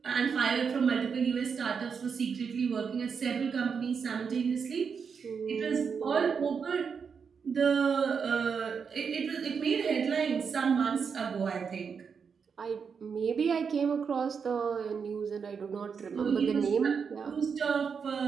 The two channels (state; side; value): quieter; left; 6.2 dB